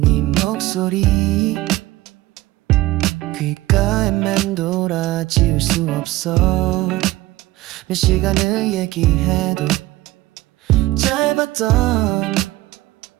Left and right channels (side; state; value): left; quieter; 17.9 dB